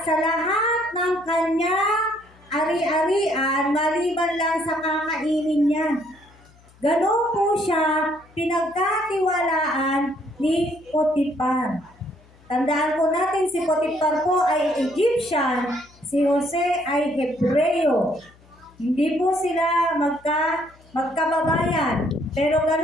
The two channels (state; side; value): noise; left; hum, 28 dB below the sound